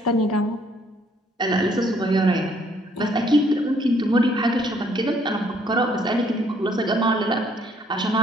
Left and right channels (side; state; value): both; normal; correlation 0.65